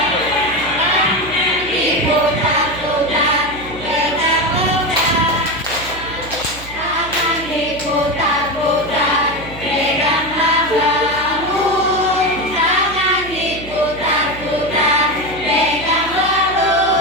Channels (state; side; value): noise; right; hum, 15 dB below the sound